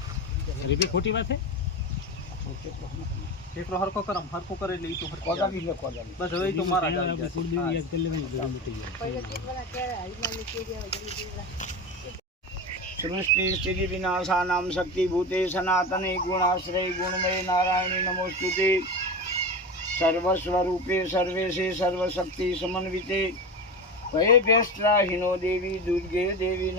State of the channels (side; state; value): both; normal; correlation 0.24